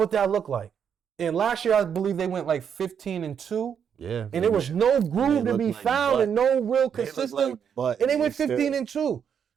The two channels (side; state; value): left; quieter; 7.7 dB